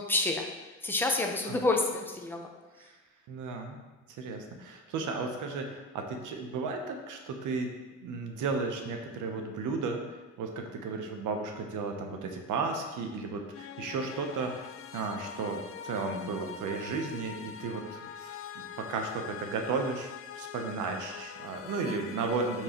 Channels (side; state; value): both; normal; correlation 0.18